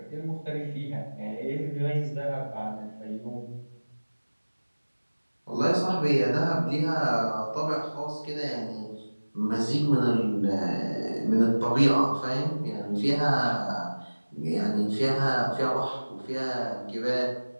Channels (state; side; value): inverted; both; correlation -1.00